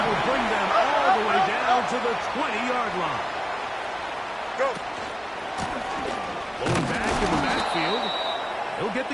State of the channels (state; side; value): identical; both; correlation 1.00